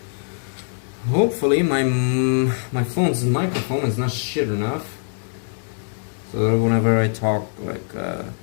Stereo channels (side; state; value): right; silent; digital silence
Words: Hopefully my phone's microphone is not shit enough, so that whenever I talk, like